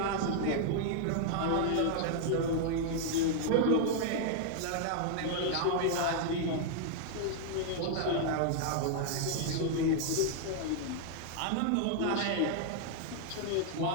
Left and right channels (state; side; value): different; both; correlation -0.01